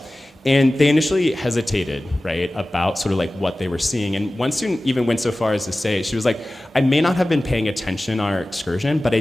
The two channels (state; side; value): normal; both; correlation 0.97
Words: and they initially hesitated, right, about sort of like what they were seeing. And one student even went so far as to say, she was like, I may not have been paying attention on our excursion, but I